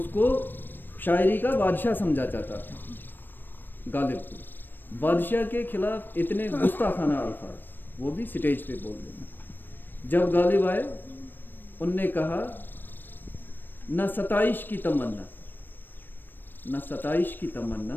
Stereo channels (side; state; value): right; late; 0.093 ms